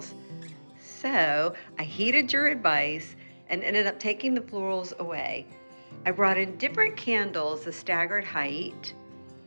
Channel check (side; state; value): both; inverted; correlation -1.00